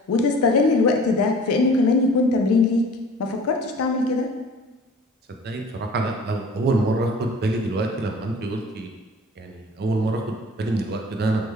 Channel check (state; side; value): normal; both; correlation 0.46